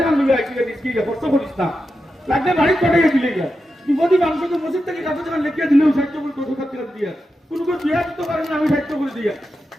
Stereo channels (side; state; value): both; normal; correlation 0.89